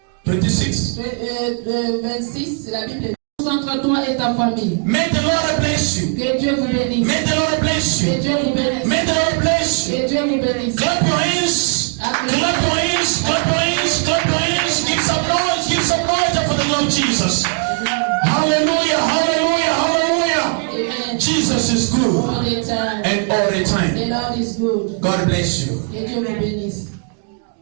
26. 26, la Bible dit, entre toi et ta famille. May the Lord bless you. Que Dieu vous bénisse. May the Lord bless Que you. Dieu vous bénisse. May the Lord bless you. Que Dieu vous bénisse. Clap your hands. Clap your hands. Clap your hands. Clap your hands. Give some noise. Give some noise for the Lord Jesus. Hallelujah. Hallelujah. Hallelujah. Amen. Jesus is good. All the time. And all the time. The Lord is good. God bless you. Que Dieu vous bénisse.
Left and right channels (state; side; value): quieter; left; 39.6 dB